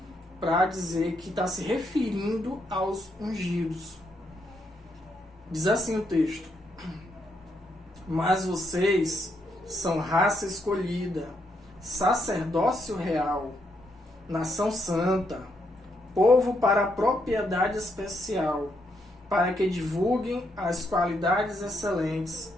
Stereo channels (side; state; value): both; normal; correlation 0.77